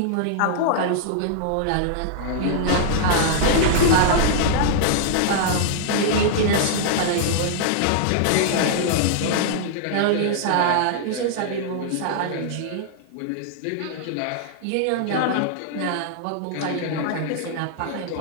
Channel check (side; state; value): both; different; correlation -0.01